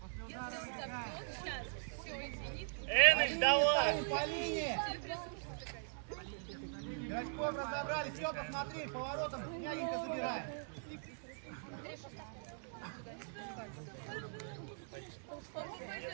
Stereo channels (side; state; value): left; silent; digital silence